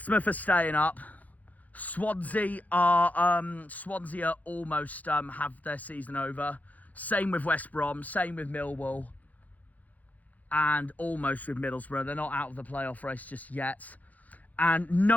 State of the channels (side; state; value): right; late; 0.078 ms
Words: are staying up. Swansea are almost have their season over. Same with West Brom, same with Millwall, and almost with Middlesbrough. They're not out of the playoff race just yet. And